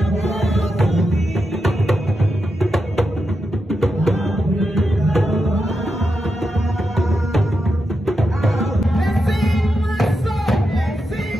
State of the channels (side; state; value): both; normal; correlation 0.87